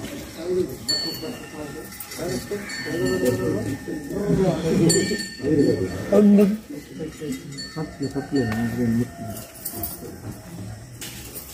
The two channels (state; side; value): identical; both; correlation 1.00